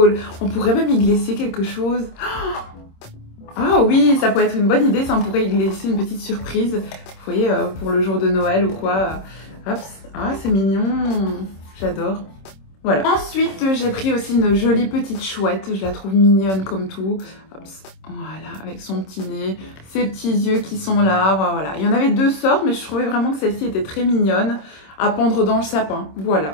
On pourrait même y glisser quelque chose. Ah oui, ça pourrait être une bonne idée. Ça, on pourrait y glisser une petite surprise. Vous voyez, pour le jour de Noël ou quoi. Hop. Ah, c'est mignon. J'adore. Voilà. Ensuite, j'ai pris aussi une jolie petite chouette. Je la trouve mignonne comme tout. Hop, voilà, avec son petit nez, ses petits yeux qui sont là. Voilà. Il y en avait deux sortes, mais je trouvais vraiment que celle-ci était très mignonne à pendre dans le sapin. Voilà,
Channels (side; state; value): right; late; 26 ms